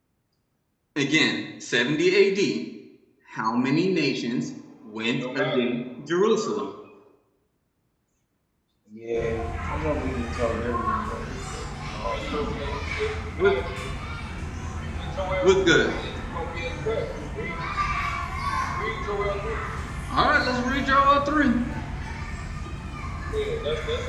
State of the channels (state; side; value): identical; both; correlation 1.00